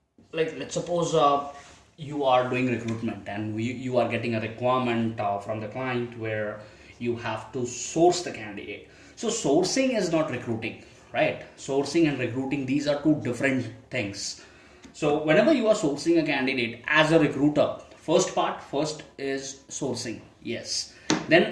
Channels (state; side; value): identical; both; correlation 1.00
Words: like let's suppose you are doing recruitment and you are getting a requirement from the client where you have to source the candidate. So sourcing is not recruiting, right? Sourcing and recruiting, these are two different things. So whenever you are sourcing a candidate as a recruiter, first is sourcing, yes.